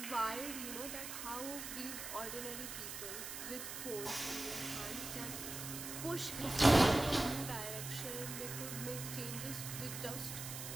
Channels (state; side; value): noise; right; hiss, 7 dB below the sound